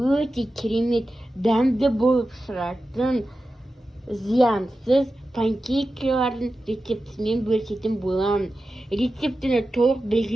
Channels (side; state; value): both; normal; correlation 0.93